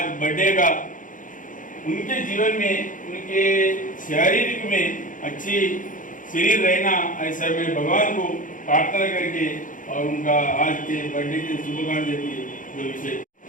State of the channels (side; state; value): right; late; 0.38 ms